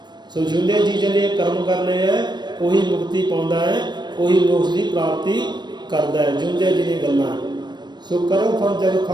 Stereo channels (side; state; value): left; late; 0.21 ms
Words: सो जिंदियां जी जिन्हें कर्म करने हैं वही मुक्ति पाउंदा है, वही मोक्ष की प्राप्ति करता है, जिंदियां जी दी गल्लां। सो कर्म फल जग